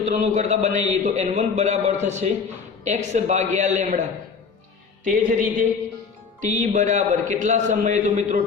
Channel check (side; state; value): right; quieter; 5.5 dB